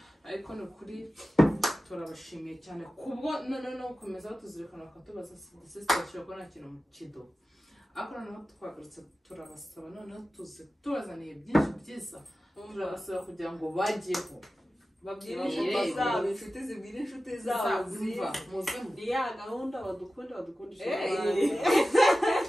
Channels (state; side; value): normal; both; correlation 0.94